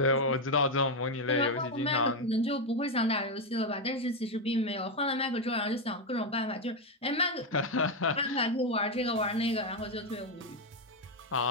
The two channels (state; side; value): normal; both; correlation 0.05